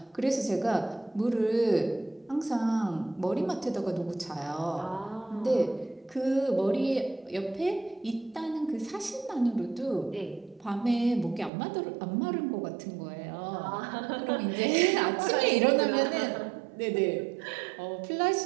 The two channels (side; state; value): left; drops out; at 11.5 s